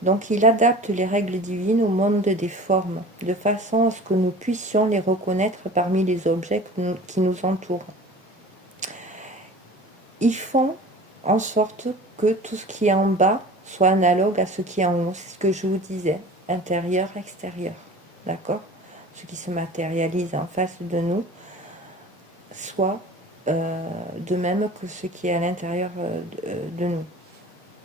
Donc il adapte les règles divines au monde des formes, de façon à ce que nous puissions les reconnaître parmi les objets qui nous entourent. Ils font en sorte que tout ce qui est en bas soit analogue à ce qui est en haut. C'est ce que je vous disais, intérieur, extérieur. D'accord? Ce qui se matérialise en face de nous soit de même que ce qui est à l'intérieur de nous.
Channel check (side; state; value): both; normal; correlation 0.41